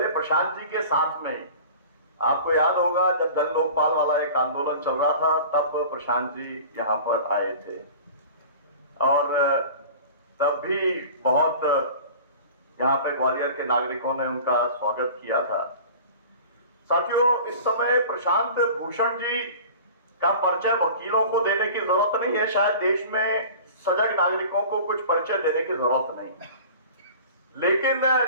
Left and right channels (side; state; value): both; inverted; correlation -0.41